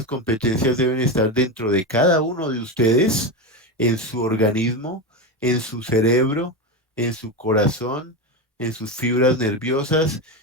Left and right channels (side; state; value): both; normal; correlation 0.17